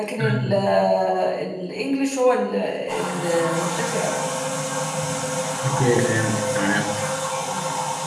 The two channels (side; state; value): both; identical; correlation 1.00